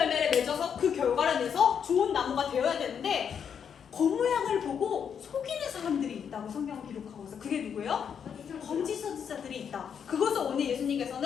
맺어서 그 결과를 내서 좋은 나무가 되어야 되는데, 겉모양을 보고 속이는 사람들이 있다고 성경은 기록하고 있어요. 그게 누구예요? 거짓 선지자들이 있다. 그것을 오늘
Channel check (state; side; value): quieter; right; 7.6 dB